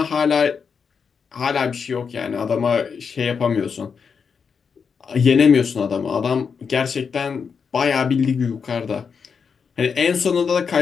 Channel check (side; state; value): right; quieter; 6.1 dB